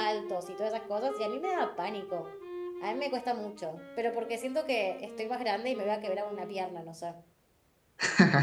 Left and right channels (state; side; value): identical; both; correlation 1.00